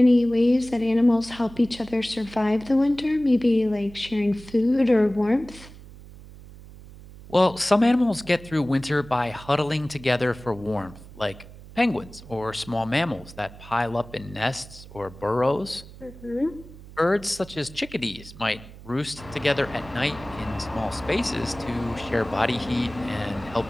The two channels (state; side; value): noise; right; hum, 18 dB below the sound